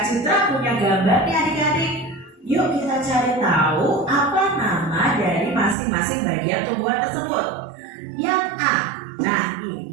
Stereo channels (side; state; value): left; drops out; at 5.8 s